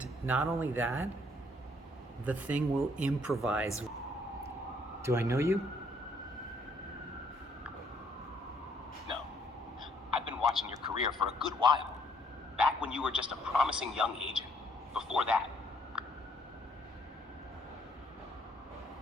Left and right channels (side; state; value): both; normal; correlation 0.66